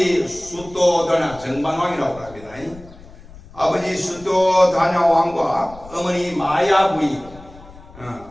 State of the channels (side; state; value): left; noise; rumble, 20 dB below the sound